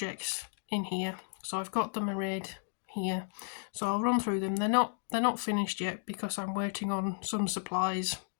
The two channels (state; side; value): silent; right; digital silence